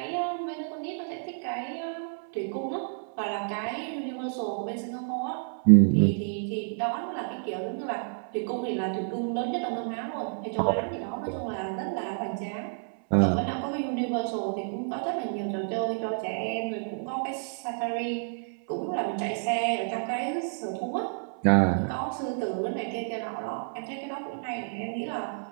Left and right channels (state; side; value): silent; left; 58 dB below the other